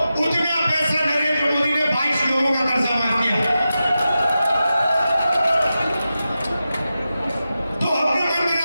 उतना पैसा नरेंद्र मोदी ने 22 लोगों का कर्जा माफ किया। तो हमने मन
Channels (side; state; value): both; inverted; correlation -0.92